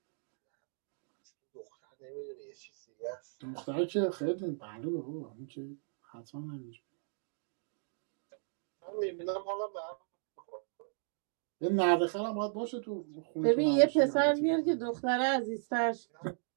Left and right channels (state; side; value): silent; left; digital silence